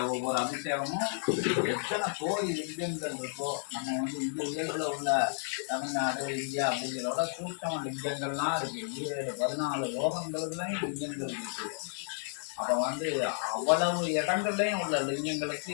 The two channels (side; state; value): right; silent; digital silence